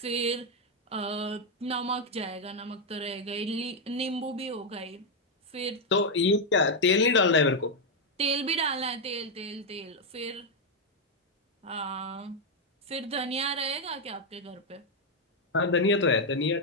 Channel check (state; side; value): normal; both; correlation 0.01